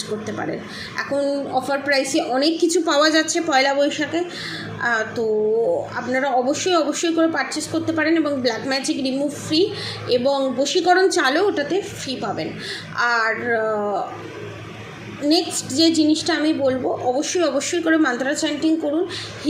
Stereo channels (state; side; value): identical; both; correlation 1.00